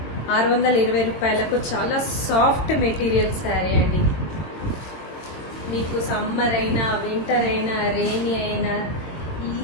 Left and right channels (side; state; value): right; late; 22 ms